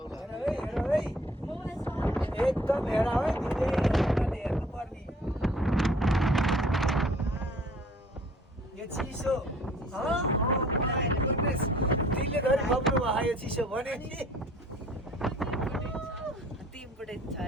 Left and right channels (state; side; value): normal; both; correlation 0.54